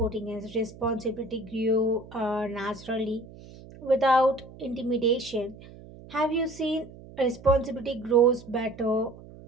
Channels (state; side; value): noise; right; hum, 18 dB below the sound